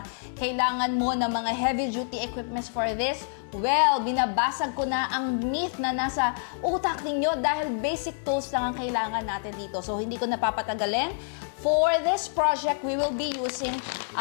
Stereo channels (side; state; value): right; silent; 60 dB below the other